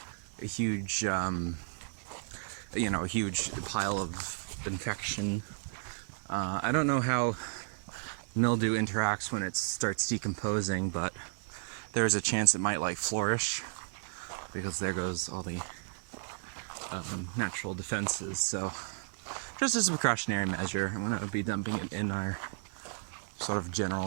a huge, a huge pile of infection. I don't know how mildew interacts when it starts decomposing, but there's a chance it might like flourish because there goes all the natural defenses. So just as a precautionary measure, I'm going to be dumping it in our sort of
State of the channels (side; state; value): left; silent; digital silence